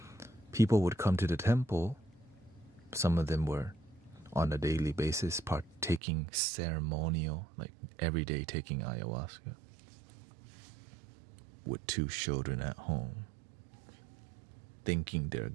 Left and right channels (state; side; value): drops out; left; at 6.0 s